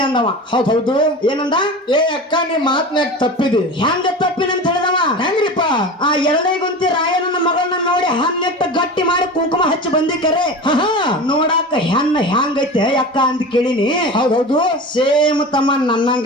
ಅಂದವ. ಹೌದು. ಏನಂದ? ಏ ಅಕ್ಕ ನೀ ಮಾತ್ನಾಗ ತಪ್ಪಿದೆ. ಹೆಂಗ ತಪ್ಪಿನ ಅಂತ ಹೇಳಿದವ. ಹೆಂಗ್ರಿಪ್ಪ? ಆ ಎರಡೇಗುಂತಿ ರಾಯಣ್ಣನ ಮಗಳನ್ನ ನೋಡಿ ಹನ್ನೆಟ್ಟು ಗಟ್ಟಿ ಮಾಡಿ ಕುಂಕುಮ ಹಚ್ಚಿ ಬಂದಿಕರೆ ನೋಡಾಕ ಹೆಣ್ಣ ಹೆಂಗೈತೆ ಅಕ್ಕ ಅಂತ ಕೇಳಿನಿ. ಹೌದು. ಸೇಮ್ ತಮ್ಮ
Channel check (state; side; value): normal; both; correlation 0.31